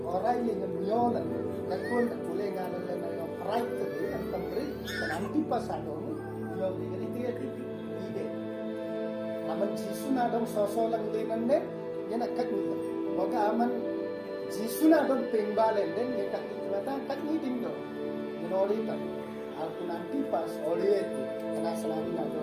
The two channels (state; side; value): identical; both; correlation 1.00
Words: orai lenga nyolan kakul boleh ngalan na right to be and tambri dan antipas ada nyol lenga itu ide aman jisu na dong sosolang linande yan akak nito boga aman jisu na dong pingbalen den yan akak nitin do ginori ta aku nanti pas oleh itu karena selalu na